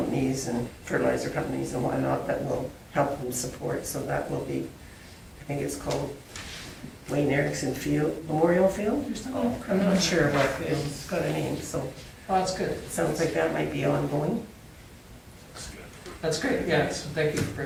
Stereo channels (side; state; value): both; identical; correlation 1.00